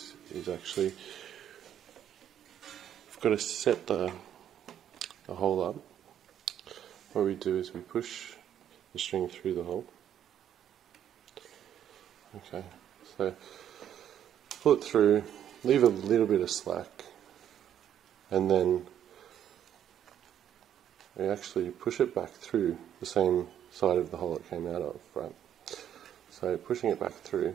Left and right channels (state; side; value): quieter; left; 10.0 dB